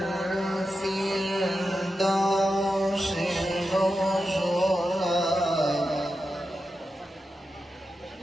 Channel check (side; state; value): both; normal; correlation 0.90